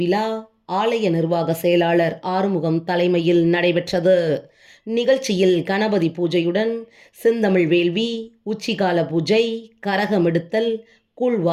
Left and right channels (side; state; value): both; identical; correlation 1.00